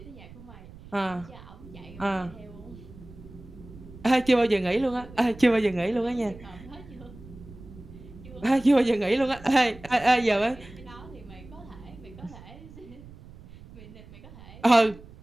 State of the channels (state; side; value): noise; right; rumble, 18 dB below the sound